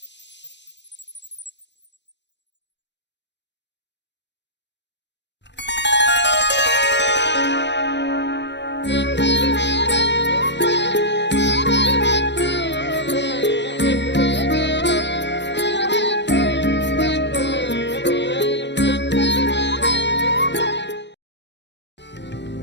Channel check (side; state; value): right; late; 0.51 ms